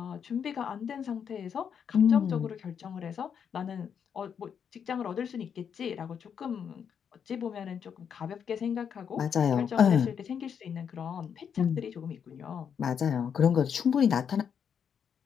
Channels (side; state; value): right; quieter; 7.5 dB